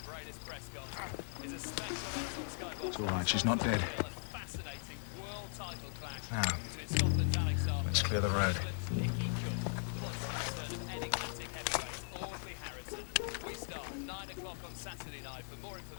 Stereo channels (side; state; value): right; silent; digital silence